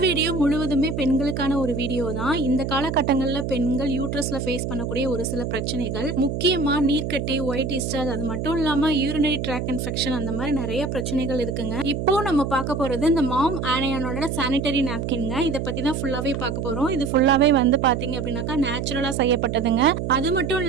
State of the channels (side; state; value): right; noise; hum, 3 dB below the sound